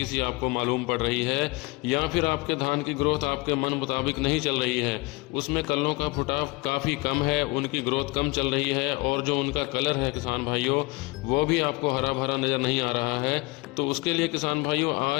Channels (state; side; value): quieter; right; 24.4 dB